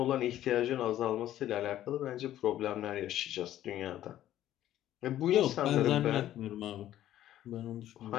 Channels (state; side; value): quieter; right; 12.7 dB